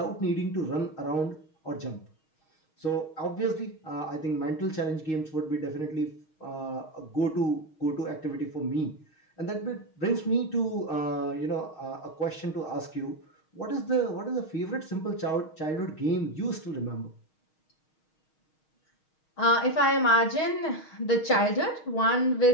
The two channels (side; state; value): right; late; 6.4 ms